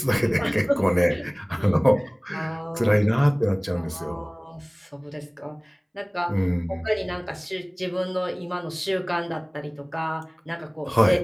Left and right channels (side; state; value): both; identical; correlation 1.00